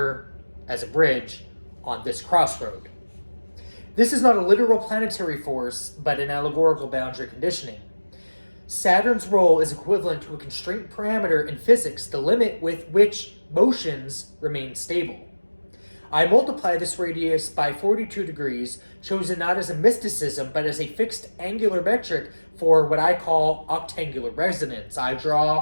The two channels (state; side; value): inverted; both; correlation -1.00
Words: as a bridge on this crossroad. This is not a literal planetary force, but an allegorical boundary conditioning. Saturn's role is equivalent to a constraint parameter in physics, the limit with which motions remain stable. I multiply this radius by 42 degrees, chosen not as a mysticism, but as a fixed angular metric for what I call octangular resonance. I draw